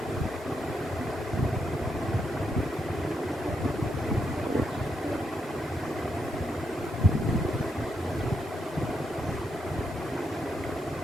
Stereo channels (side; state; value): both; normal; correlation 0.80